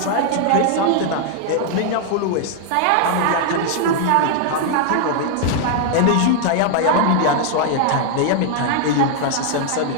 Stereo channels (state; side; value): different; both; correlation 0.00